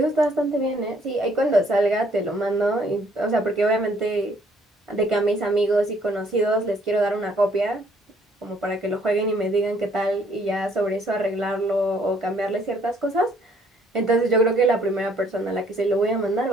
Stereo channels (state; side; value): normal; both; correlation 0.63